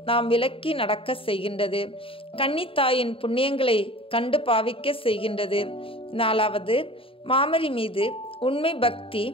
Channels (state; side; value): late; right; 0.26 ms